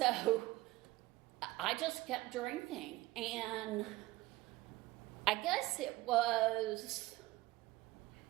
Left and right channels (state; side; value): quieter; left; 18.4 dB